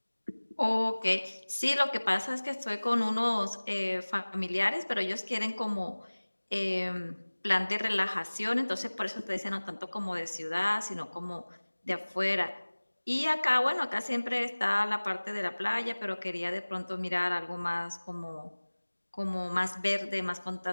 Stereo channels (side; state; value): both; inverted; correlation -1.00